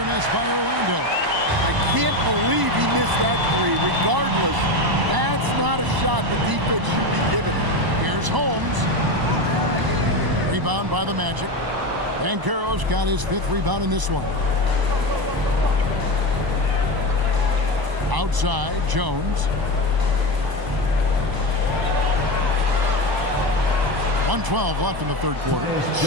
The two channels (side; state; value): left; late; 1.0 ms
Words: miss by Orlando. I can't believe he missed that three. Regardless, that's not a shot the defense should be giving him. Here's Holmes. Rebound by the Magic. Banchero's got his 5th rebound in this one. Outside, Jones. 1:12 left in the third quarter.